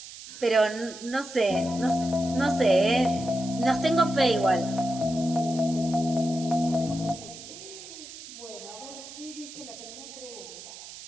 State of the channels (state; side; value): noise; right; hiss, 14 dB below the sound